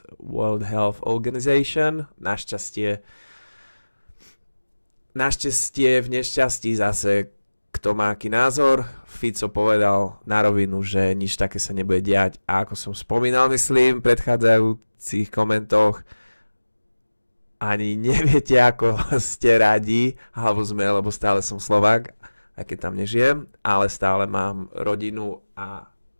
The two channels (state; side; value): inverted; both; correlation -1.00